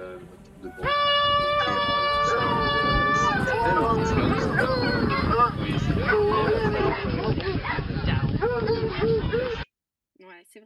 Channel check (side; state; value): both; identical; correlation 1.00